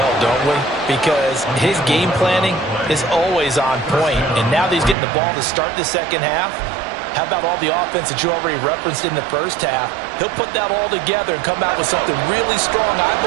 don't we? Because his game planning is always on point. And now that he's getting the ball to start the second half, how about all the offense that you already referenced in the first half? He'll put that all together and come out with something really strong, I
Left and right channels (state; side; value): drops out; left; at 5.0 s